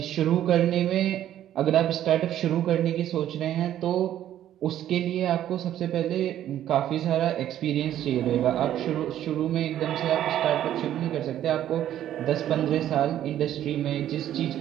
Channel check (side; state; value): left; quieter; 11.7 dB